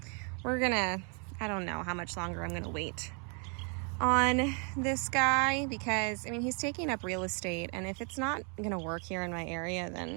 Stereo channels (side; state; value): left; quieter; 37.6 dB